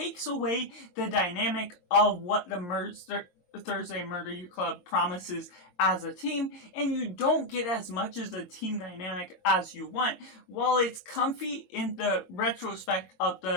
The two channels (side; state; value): right; late; 23 ms